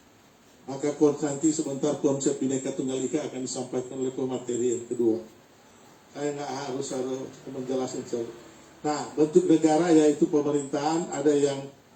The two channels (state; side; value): identical; both; correlation 1.00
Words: Maka nanti sebentar konsep Bhinneka Tunggal Ika akan disampaikan oleh pemateri yang kedua. Saya nggak harus menjelaskan. Nah, bentuk negara yaitu pemerintahan, ada yang